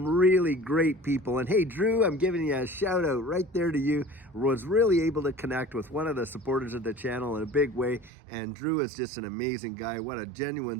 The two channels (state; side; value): drops out; left; at 8.1 s